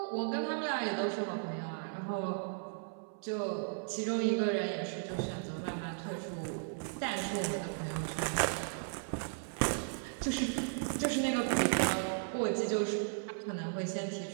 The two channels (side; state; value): left; silent; 54 dB below the other